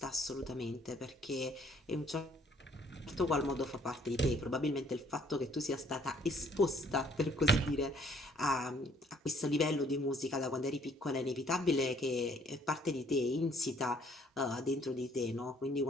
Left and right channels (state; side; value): normal; both; correlation 0.62